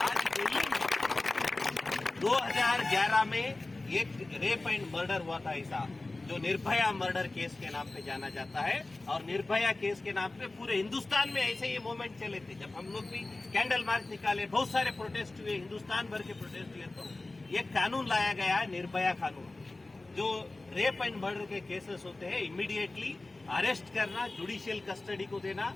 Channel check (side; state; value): right; quieter; 3.1 dB